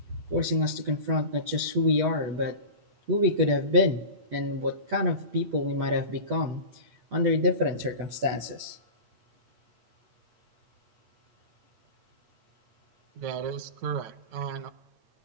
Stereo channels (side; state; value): left; late; 8.2 ms